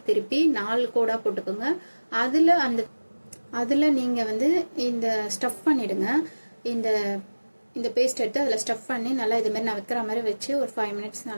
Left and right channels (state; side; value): inverted; both; correlation -1.00